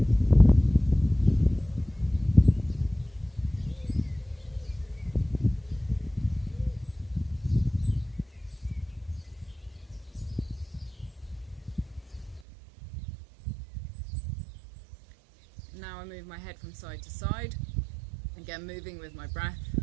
Now I move my head from side to side, again moving with my breath.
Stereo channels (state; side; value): drops out; left; at 12.4 s